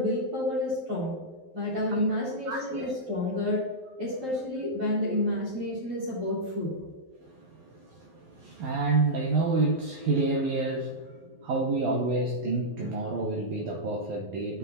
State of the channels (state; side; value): late; left; 11 ms